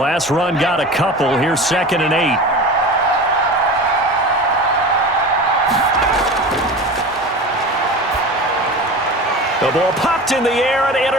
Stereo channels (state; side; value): normal; both; correlation 0.33